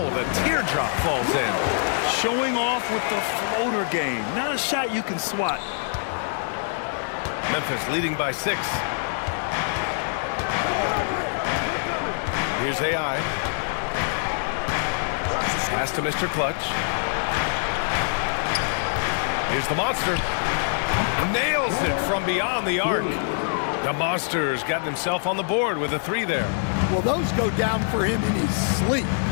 the teardrop falls in. Showing off with the floater game. Not a shot you can swat. Memphis leading by 6. Here's AI. Pass to Mr. Clutch. Here's the Monster. Nails it from beyond the arc. The Monster's gotten himself on the board with a 3 there. Well, those go down for him in his sleep.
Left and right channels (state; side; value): silent; right; digital silence